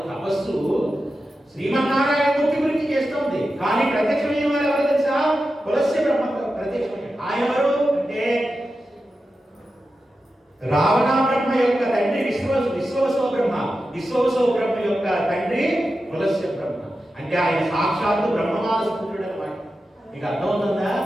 రావణ బ్రహ్మ యొక్క తండ్రి విశ్వవసో బ్రహ్మ. విశ్వవసో బ్రహ్మ యొక్క తండ్రి పులస్య బ్రహ్మ. అంటే ఆయన సాక్షాత్తు బ్రహ్మమానస పుత్రుడు అన్నమాట. మీకు అర్థమవుతుందా?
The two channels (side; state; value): both; normal; correlation 0.91